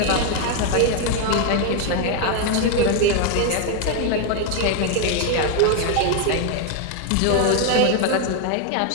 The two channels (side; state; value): both; different; correlation 0.01